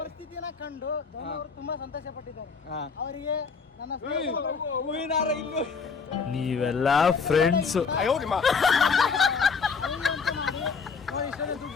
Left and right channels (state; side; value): quieter; right; 5.4 dB